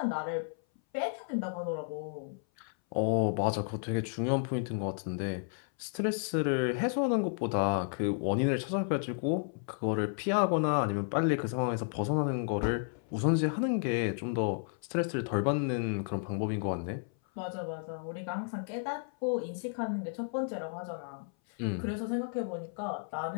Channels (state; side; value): silent; right; 56 dB below the other